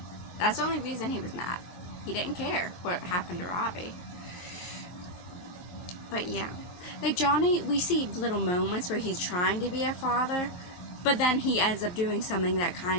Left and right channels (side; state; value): right; late; 23 ms